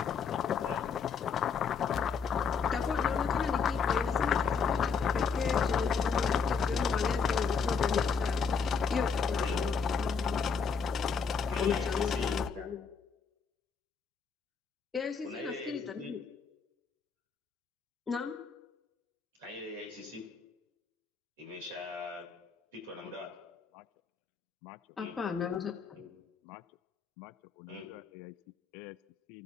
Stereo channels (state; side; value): quieter; right; 5.8 dB